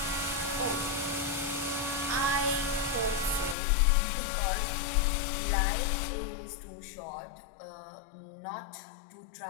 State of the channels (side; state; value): right; drops out; at 3.6 s